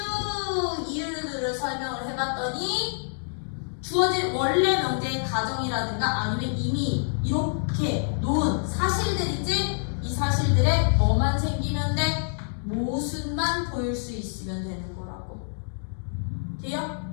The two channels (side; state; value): right; silent; digital silence